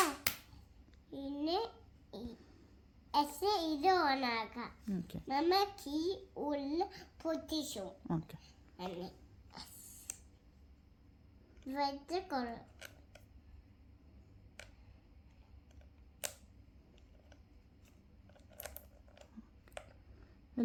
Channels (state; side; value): identical; both; correlation 1.00